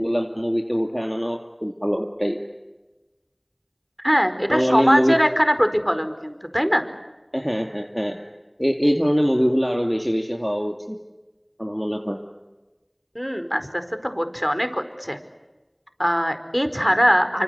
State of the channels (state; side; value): identical; both; correlation 1.00